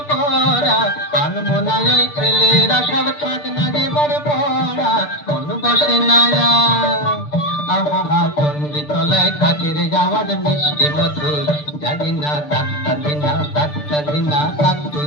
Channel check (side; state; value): right; late; 6.8 ms